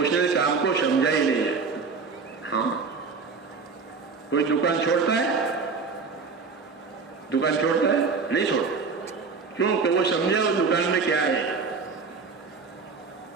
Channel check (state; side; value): quieter; left; 4.8 dB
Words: نے کام کو سمجھا ہی نہیں ہے. ہاں, کوئی دکان چھوڑتا ہے, دکان چھوڑتا ہے نہیں چھوڑتا, کیوں کہ وہ سمجھا وہ دکان میں کیا ہے.